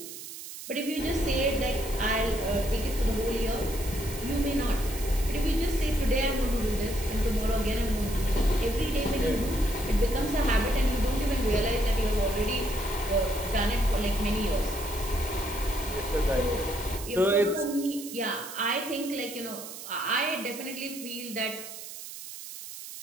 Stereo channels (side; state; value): right; noise; hiss, 11 dB below the sound